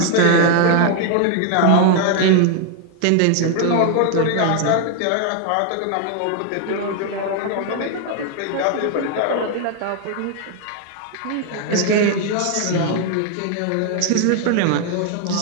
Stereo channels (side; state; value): both; different; correlation 0.00